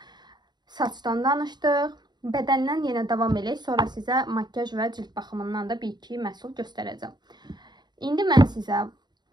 Saçdan danışdıq. Bədəndən yenə davam edək. Sonra sizə makyaj və cilt baxımından da 1-2 məhsul göstərəcəm. İndi mən sizə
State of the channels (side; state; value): left; late; 0.21 ms